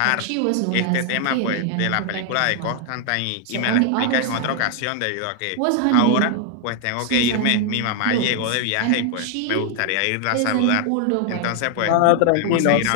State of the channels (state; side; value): different; both; correlation 0.00